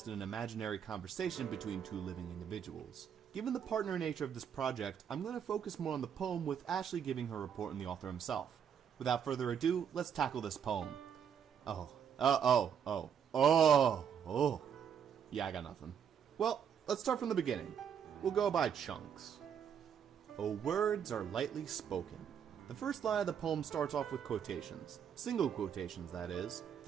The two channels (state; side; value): quieter; left; 8.1 dB